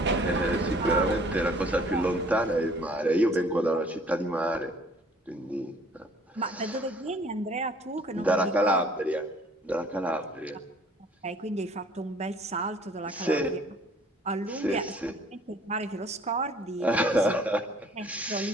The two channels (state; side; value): normal; both; correlation 0.55